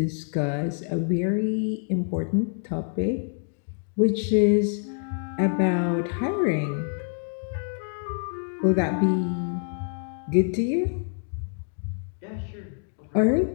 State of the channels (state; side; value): silent; right; 61 dB below the other